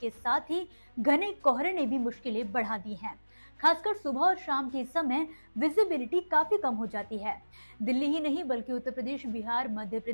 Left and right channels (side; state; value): both; inverted; correlation -1.00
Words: साथ ही घने कोहरे ने भी मुश्किलें बढ़ा दी हैं। खासकर सुबह और शाम के समय विजिबिलिटी काफी कम हो जाती है। दिल्ली ही नहीं बल्कि उत्तर प्रदेश, बिहार, मध्य